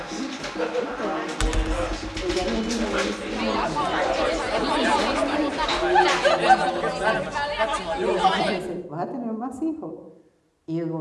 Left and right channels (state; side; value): identical; both; correlation 1.00